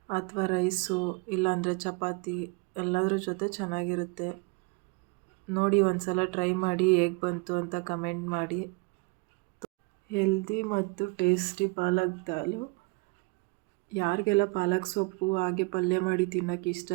ಅಥವಾ ರೈಸು, ಇಲ್ಲಾಂದರೆ ಚಪಾತಿ ಎಲ್ಲದ್ರ ಜೊತೆ ಚೆನ್ನಾಗಿರುತ್ತೆ. ನೋಡಿ, ಒಂದು ಸಲ ಟ್ರೈ ಮಾಡಿ, ಹೇಗೆ ಬಂತು ಅಂತ ಕಮೆಂಟ್ ಮಾಡಿ. ಹೆಲ್ದಿ ಮತ್ತು ಟೇಸ್ಟಿ ಪಾಲಕ್ ದಾಲು. ಯಾರಿಗೆಲ್ಲ ಪಾಲಕ್ ಸೊಪ್ಪು ಹಾಗೆ ಪಲ್ಯ ಮಾಡಿ ತಿನ್ನೋಕ್ಕೆ ಇಷ್ಟ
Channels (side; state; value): left; quieter; 28.6 dB